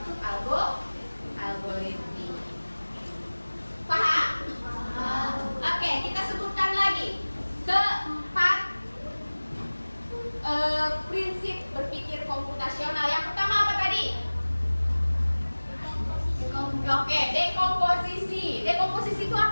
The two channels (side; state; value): both; inverted; correlation -1.00